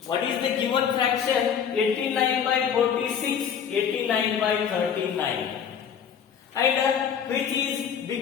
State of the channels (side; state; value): right; quieter; 7.8 dB